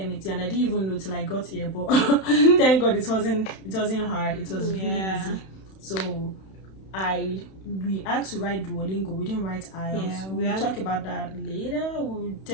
and I didn't even know till I got here. But thank God it wasn't hard. It was really easy. So we had to write Duolingo. We didn't write IELTS. Yeah, we'll talk about that later. We'll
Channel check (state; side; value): late; right; 31 ms